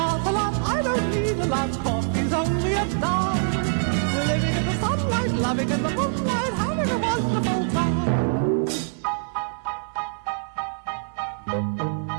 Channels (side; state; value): left; silent; 62 dB below the other